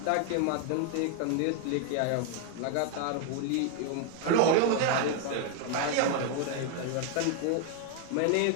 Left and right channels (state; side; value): different; both; correlation 0.00